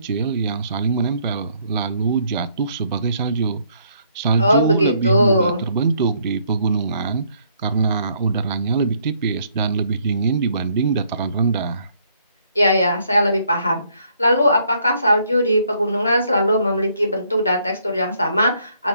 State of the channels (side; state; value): both; inverted; correlation -0.68